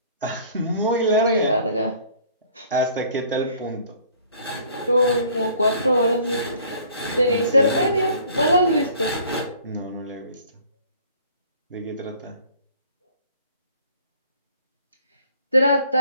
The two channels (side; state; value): both; inverted; correlation -0.54